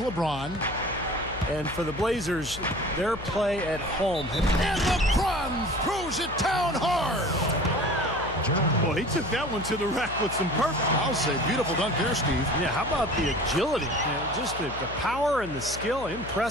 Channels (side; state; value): left; noise; hum, 12 dB below the sound